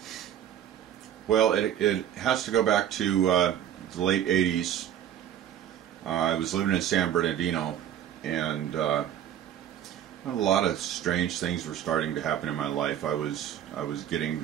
Well, it has to go back to the late 80s. I was living in San Bernardino, and a lot of strange things were starting to happen in my life. I was getting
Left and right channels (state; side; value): quieter; left; 10.4 dB